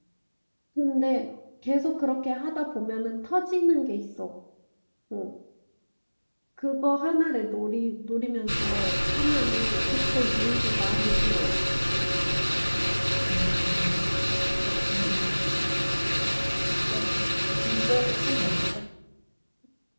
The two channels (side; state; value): both; inverted; correlation -1.00